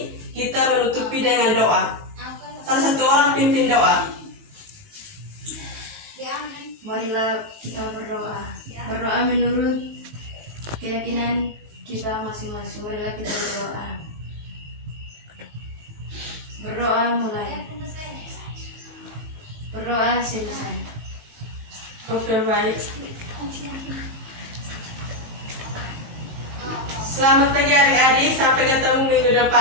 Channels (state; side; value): late; left; 18 ms